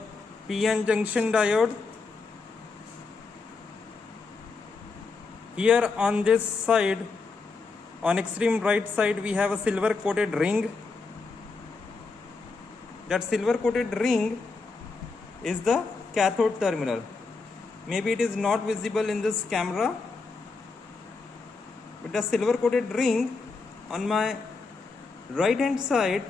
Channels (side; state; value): right; quieter; 4.2 dB